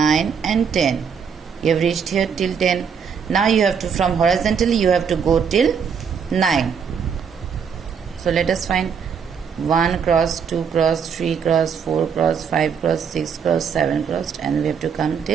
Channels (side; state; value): left; quieter; 6.8 dB